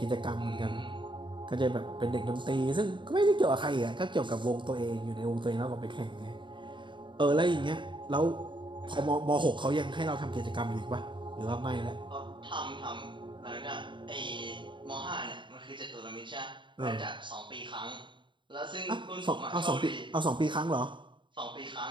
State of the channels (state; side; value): late; left; 0.23 ms